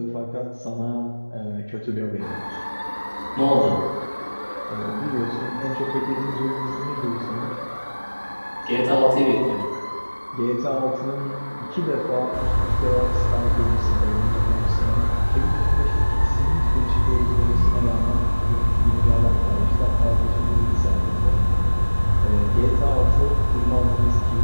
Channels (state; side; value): inverted; both; correlation -1.00